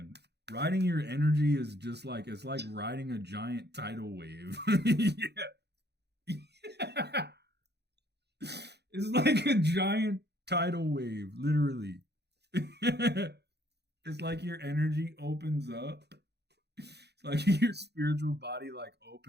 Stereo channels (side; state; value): left; late; 0.48 ms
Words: riding your energy is just like, it's like riding a giant tidal wave. Yeah. It's like a giant tidal wave, literally. It's like your energy opens up. It's like your spiritual body like